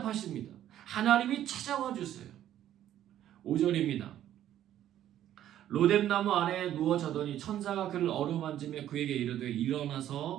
하나님이 찾아와 주세요. 5절입니다. 로뎀나무 아래에 누워 자더니 천사가 그를 어루만지며 그에게 이르되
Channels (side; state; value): left; quieter; 11.8 dB